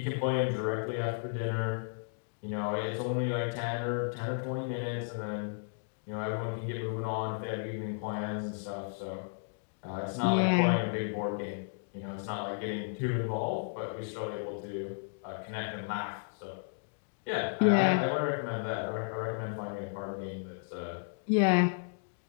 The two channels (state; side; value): silent; right; digital silence